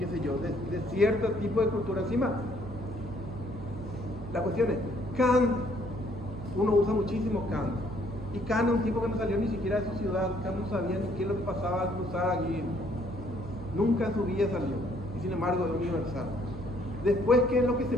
sé yo, de cierto tipo de cultura. Encima, la cuestión es, Kant, uno usa muchísimo Kant, y Kant es un tipo que no salió ni siquiera de su ciudad. Kant no sabía ni qué es lo que pasaba al cruzar aquí, nunca en su vida salió, y sin embargo es universal. Después, ¿qué es lo que se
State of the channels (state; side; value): noise; right; hum, 11 dB below the sound